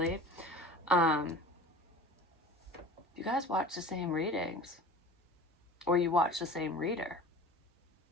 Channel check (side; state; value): both; normal; correlation 0.39